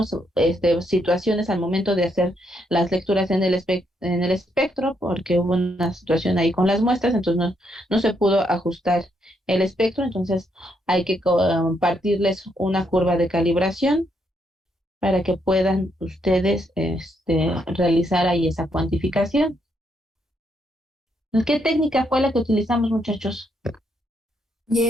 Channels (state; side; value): normal; both; correlation 0.76